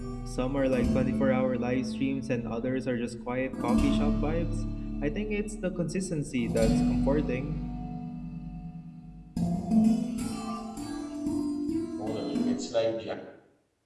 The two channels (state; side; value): identical; both; correlation 1.00